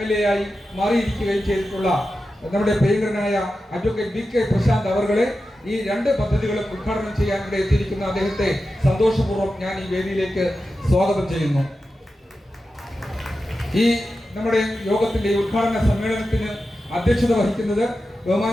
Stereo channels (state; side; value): normal; both; correlation 0.92